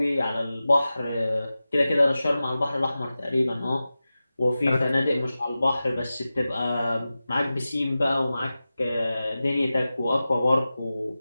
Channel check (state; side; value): inverted; both; correlation -0.95